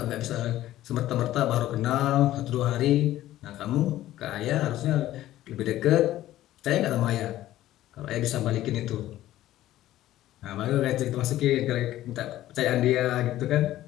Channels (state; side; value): quieter; right; 14.3 dB